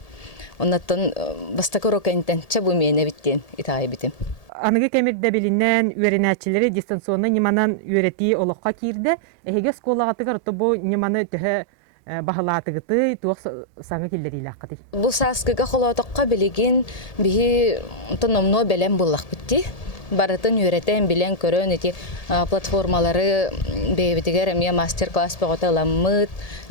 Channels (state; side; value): late; right; 1.8 ms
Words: Оннаттан бастакы уроккайнтен чабу мейне биттен итағай битим. Анығы кәмірді білінен үйренәтчілері дистанционны неманан үйрети олыққа кирді. Әйге сколағатығар бұ неманы түхі бағылатығыты туық саңы келдері илаққыды. Бұл саскыға қолатыққа білеген бігі тономно бәлем болақ бітті. Барытын үйретен білен көрін еті платформалары бейбітігер әмия мастер-класс бағыта ламмыд,